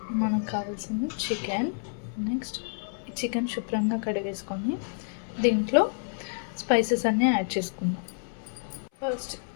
మనకు కావాల్సింది చికెన్. నెక్స్ట్ చికెన్ శుభ్రంగా కడిగేసుకొని దీంట్లో స్పైసెస్ అన్నీ యాడ్ చేసుకుందాం. First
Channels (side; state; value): right; silent; 59 dB below the other